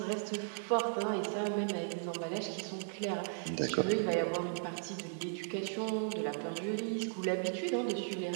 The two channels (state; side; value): silent; left; 54 dB below the other